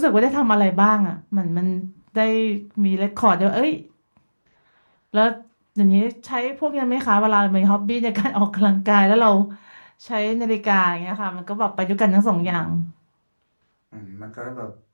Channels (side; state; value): both; inverted; correlation -1.00